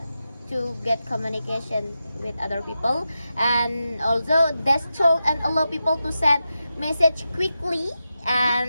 get communication with other people, and also that's told and allow people to send message quickly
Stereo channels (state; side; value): inverted; both; correlation -0.90